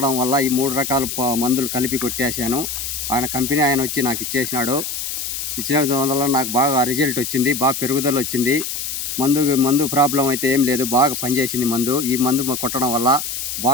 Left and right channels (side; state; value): left; noise; hiss, 5 dB below the sound